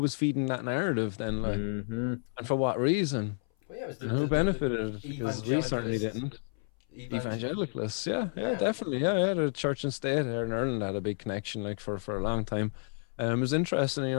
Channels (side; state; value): right; silent; 57 dB below the other